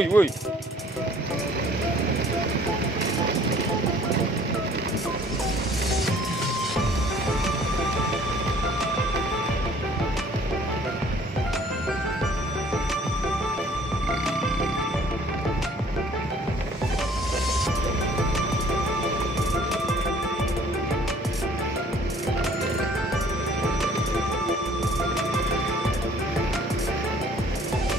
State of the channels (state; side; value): normal; both; correlation 0.55